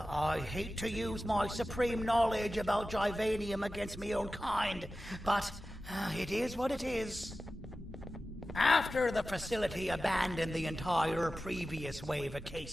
I hate to use my supreme knowledge about 𝕻𝖊𝖓𝖙 against my own kind, but it is what it is. After the facility abandoned the entire previous wave of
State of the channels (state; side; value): normal; both; correlation 0.94